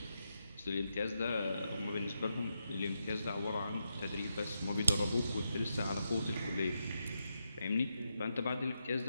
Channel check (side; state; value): both; inverted; correlation -0.84